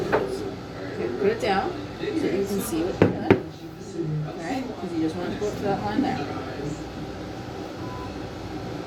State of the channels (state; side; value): identical; both; correlation 1.00